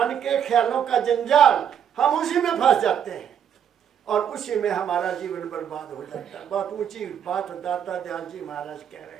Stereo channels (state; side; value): quieter; left; 8.7 dB